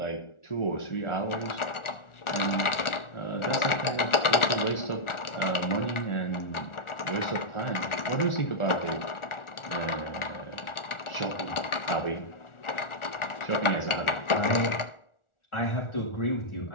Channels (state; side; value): late; right; 1.4 ms